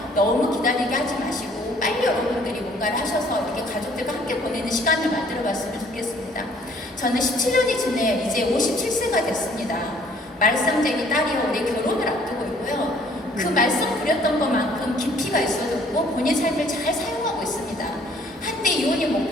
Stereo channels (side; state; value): both; normal; correlation 0.59